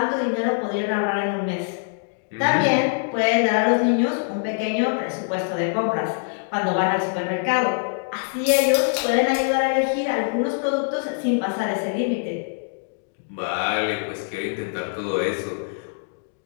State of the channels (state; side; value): silent; right; digital silence